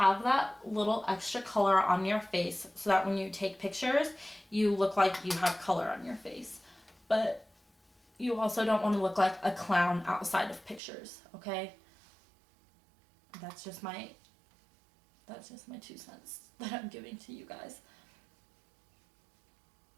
that little extra color on your face so that when you take pictures, you look like you have color on your face. But you also don't want to look like a clown outside of pictures, okay? That's just my 2 cents that I'm giving to you guys.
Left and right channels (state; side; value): drops out; left; at 10.8 s